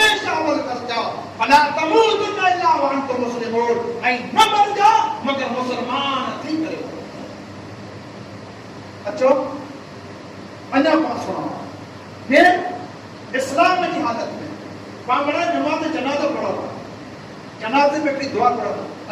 अमल करजा फला तमूतुन्ना इल्ला व अंतुम मुस्लिमून ऐ न मर जा मगर मुसलमान थी करे अचो अन्ना पास सुनो फिर इस्लाम की हालत में पामड़ा नमाज जनाजा पढ़ो जनाजे में भी दुआ पढ़ो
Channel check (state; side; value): identical; both; correlation 1.00